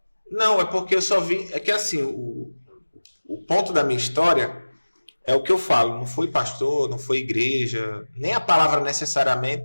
Não, é porque eu só vi... É que assim, o ponto da minha história... É o que eu falo, não foi pastor, não foi igreja, nem a palavra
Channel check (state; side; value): inverted; both; correlation -1.00